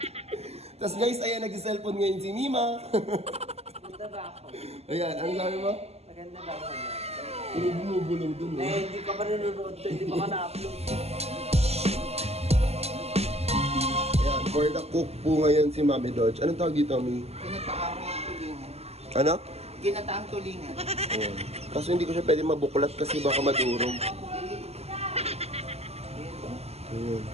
Tapos guys, ayan, nag-cellphone ngayon si Mima. Maganda ba ako? Ayan, ano sabi mo? Maganda ba ako? Bumubulong dun eh. Hindi ka pa nanonood to, hindi pa ka na-upload. Ayan, for the cook po ngayon si Mami Dodge. Anong tawag dito, Mi? Ginataang tulingan. Ano? Ginataang tulingan. Ayan. Kaso hindi ko siya pwede mabuklat kasi baka madurog. Ayan.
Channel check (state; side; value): late; left; 0.30 ms